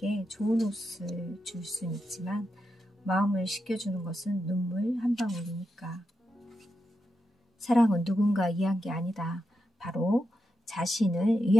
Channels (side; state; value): both; normal; correlation 0.87